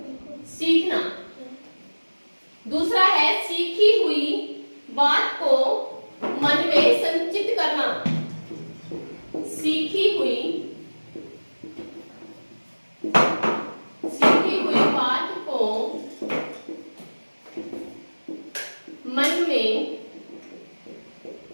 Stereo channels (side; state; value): both; inverted; correlation -1.00